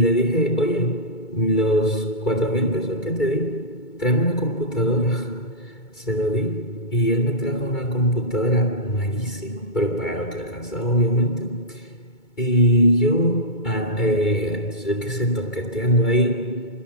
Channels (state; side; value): late; right; 2.2 ms